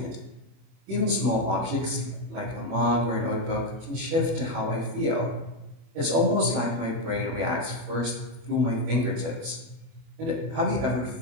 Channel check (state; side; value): late; left; 31 ms